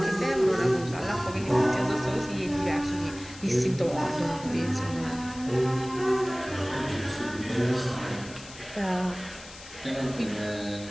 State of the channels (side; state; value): left; noise; hiss, 17 dB below the sound